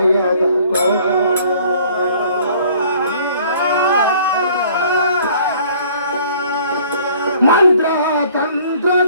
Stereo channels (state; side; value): inverted; both; correlation -0.55